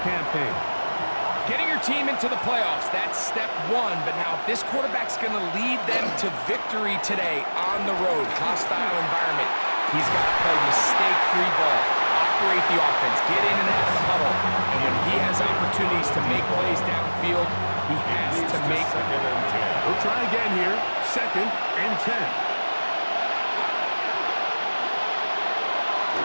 campaign. Getting your team into the playoffs, that's step one. But now if this quarterback's going to lead them to victory today on the road, hostile environment, he's got to play mistake-free ball, operate the offense, get in and out of the huddle. And when he has opportunities to make plays downfield, he has to make them. We'll try again here, 2nd and 10.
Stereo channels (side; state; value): both; inverted; correlation -1.00